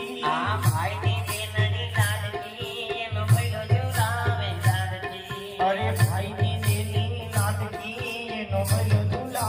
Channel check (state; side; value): identical; both; correlation 1.00